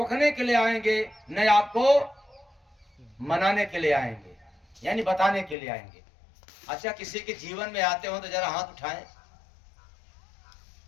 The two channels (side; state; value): right; drops out; at 5.6 s